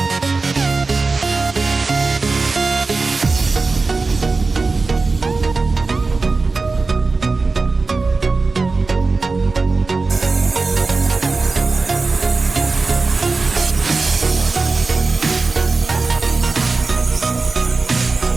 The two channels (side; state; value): left; quieter; 3.9 dB